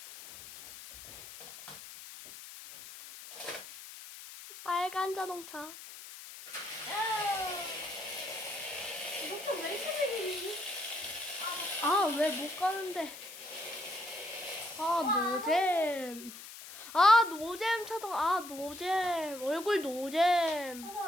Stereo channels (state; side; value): noise; left; hiss, 14 dB below the sound